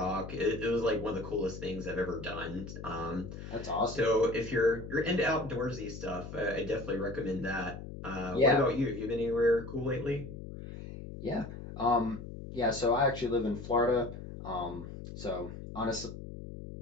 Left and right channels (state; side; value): noise; left; hum, 10 dB below the sound